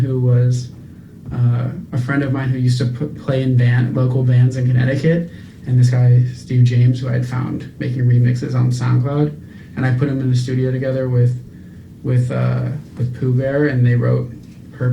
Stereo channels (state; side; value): identical; both; correlation 1.00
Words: was a friend of mine who used to play in local bands in Connecticut, and this guy Steve James, who I'd found making remixes on SoundCloud. And I put them in the studio together with Pooh Bear, and they wrote